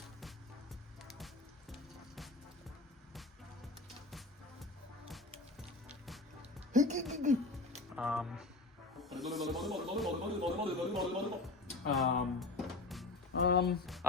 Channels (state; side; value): quieter; right; 3.3 dB